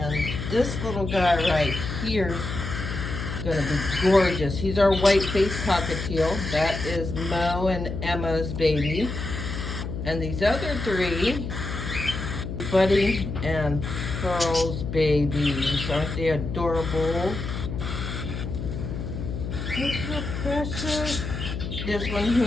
this little guy right here is gonna be gorgeous. He's our white-faced cockatiel. That is Mo and Emma's baby. And these other three, Buddy and Pearl's babies. Aren't they adorable? Look how precious. This one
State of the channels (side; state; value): left; noise; hum, 5 dB below the sound